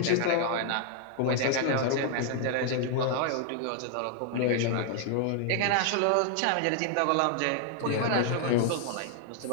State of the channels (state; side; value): different; both; correlation 0.00